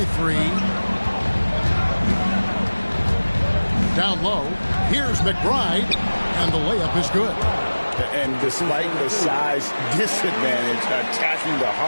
3. Down low. Here's McBride. And the layup is good. And despite the size disadvantage, attacking the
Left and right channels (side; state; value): both; inverted; correlation -1.00